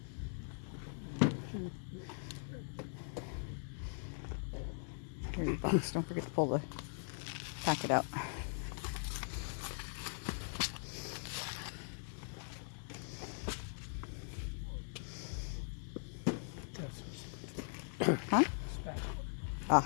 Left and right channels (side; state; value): right; silent; digital silence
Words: Here's your box. Don't forget to pull the packet out. Huh? Ah.